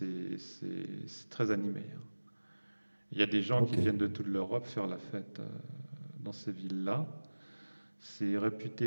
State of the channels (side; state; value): both; inverted; correlation -1.00